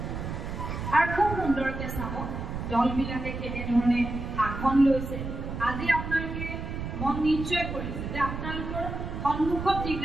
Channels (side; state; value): right; noise; rumble, 6 dB below the sound